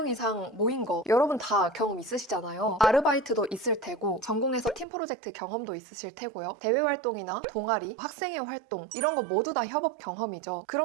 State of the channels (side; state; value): left; drops out; at 4.9 s